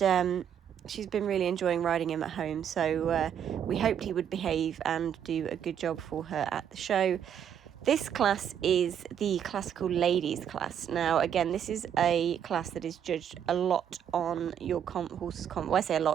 she's been really enjoying riding him at home, so we hoped he would behave and do a good job for her at the show. This class is the classical ladies class. Now, again, this is a class that is judged a lot on your horse's well, I say a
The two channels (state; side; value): quieter; left; 8.9 dB